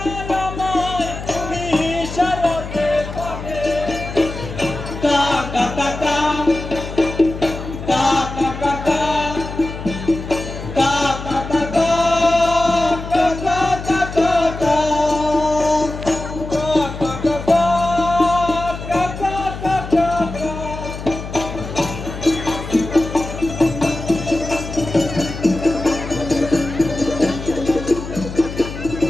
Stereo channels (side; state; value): left; noise; hum, 9 dB below the sound